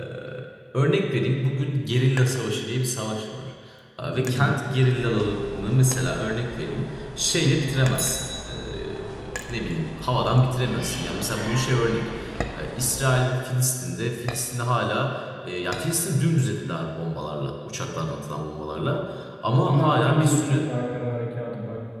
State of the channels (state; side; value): identical; both; correlation 1.00